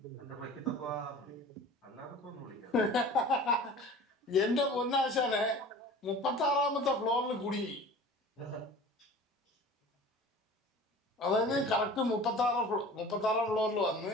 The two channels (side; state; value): both; normal; correlation 0.41